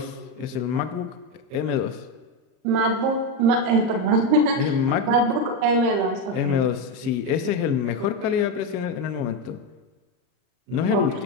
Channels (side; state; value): left; late; 38 ms